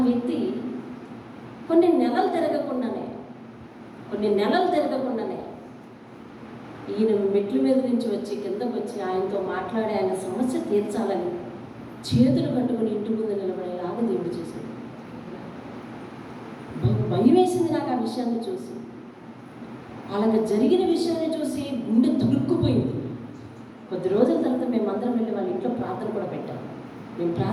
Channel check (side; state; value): both; identical; correlation 1.00